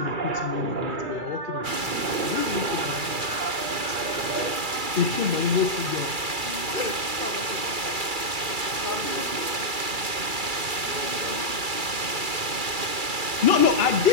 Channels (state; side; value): late; left; 2.3 ms